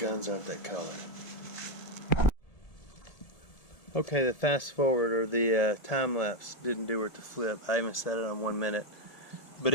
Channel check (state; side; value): late; right; 1.7 ms